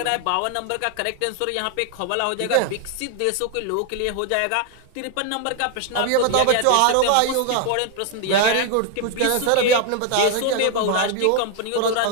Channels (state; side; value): different; both; correlation 0.00